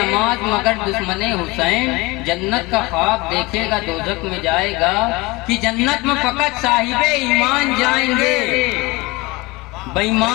मगर दुश्मने हुसैन, जन्नत का ख्वाब देखेगा दोजख में जाएगा। कि जन्नत में फकत साहिबे ईमान जाएंगे,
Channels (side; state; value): right; quieter; 23.2 dB